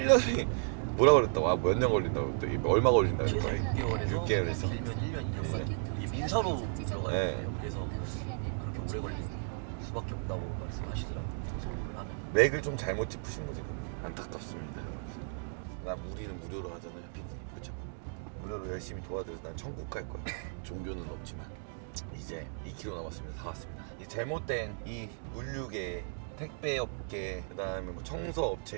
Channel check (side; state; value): left; silent; digital silence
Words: 뭐라 그랬다고 몇 년 걸린다고 또 얼마 걸린다고 최소 6개월에서 길면 1년 2년까지 이게 민사로 들어가야 돼요. 그래서 그렇게 오래 걸릴 수밖에 없다고 말씀하시더라고요. 고소를 하면 맥을 좀 잘못 짚으신 거지. 안타깝습니다 여러분. 우리는 무료로 하잖아요 피디님. 그쵸? 무료로 열심히 도와드려서 난 천국 갈 거야. 종교는 없지만 이제 2km 남았습니다. 다 왔습니다. 이 잘못된 이 물류계 택배업계 그 다음에 뭐